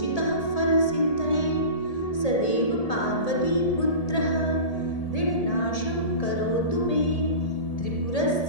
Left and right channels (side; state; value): right; late; 1.8 ms